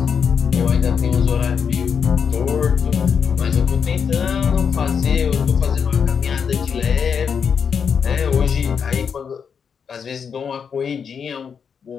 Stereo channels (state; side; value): quieter; right; 6.7 dB